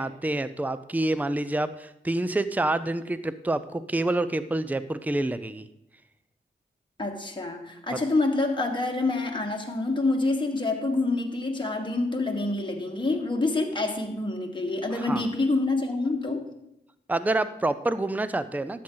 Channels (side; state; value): both; normal; correlation 0.78